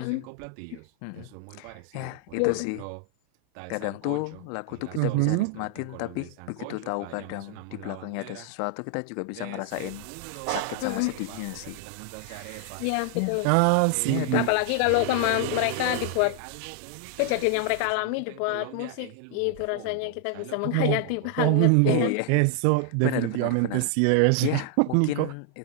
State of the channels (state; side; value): different; both; correlation 0.00